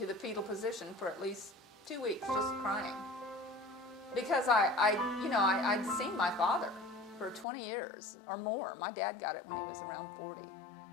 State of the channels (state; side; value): drops out; right; at 7.5 s